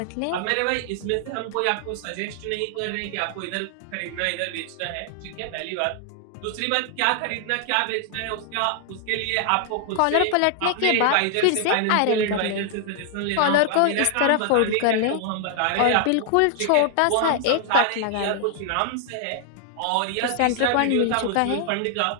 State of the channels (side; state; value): both; different; correlation 0.00